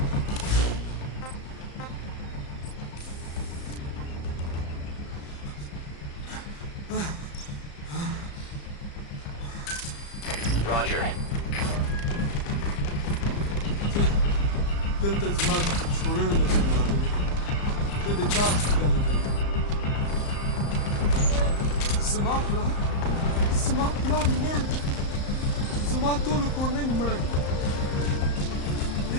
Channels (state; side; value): late; right; 35 ms